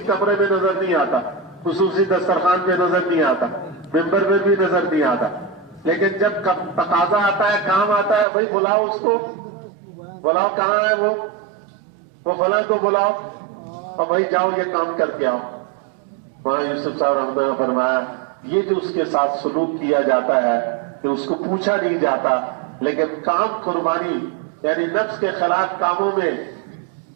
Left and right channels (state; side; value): drops out; left; at 8.2 s